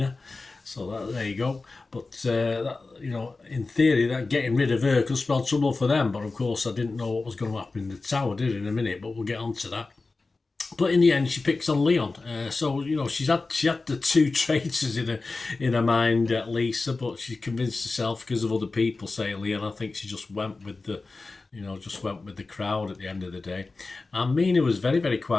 so there you go. But, in theory, that getting rid of her could spell trouble for them, but of course I didn't know what was going to happen in the tower, did I, in a minute, but we'll get on to that. But in the end, she picks on Leon. So she had the 2 traitors in her mind, Lisa, but she convinced herself because of other people saying Leon. I think she just went with the crowd at the end of the day. And Mina was very, very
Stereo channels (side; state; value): right; quieter; 3.7 dB